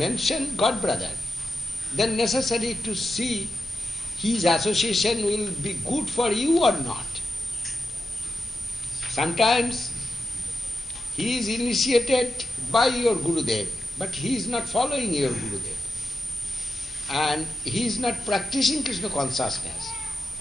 God brother, then necessary to see his association will be good for you or not. Sometimes he is initiated by your Gurudev, but he is not following your Gurudev. And he is not practicing Krishna consciousness.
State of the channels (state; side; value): normal; both; correlation 0.89